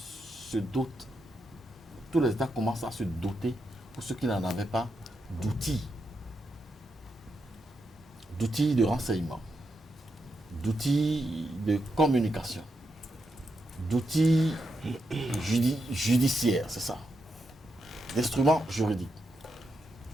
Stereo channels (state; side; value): normal; both; correlation 0.84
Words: dotent, tous les États commencent à se doter, pour ceux qui n'en avaient pas, d'outils de renseignement, d'outils de communication, d'outils judiciaires, c'est ça, d'instruments juridiques.